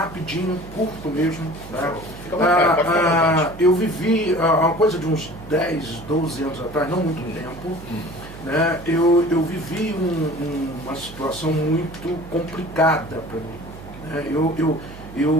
curto mesmo. Né? Eu vivi uma coisa de uns 10, 12 anos atrás, não muito tempo. Né? Eu vivi uma situação muito complicada para mim. Né?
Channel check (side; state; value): right; noise; hum, 15 dB below the sound